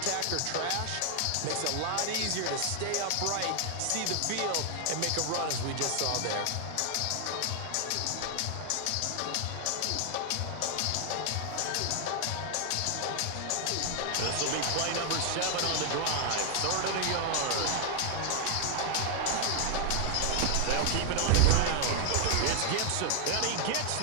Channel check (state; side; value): different; both; correlation 0.00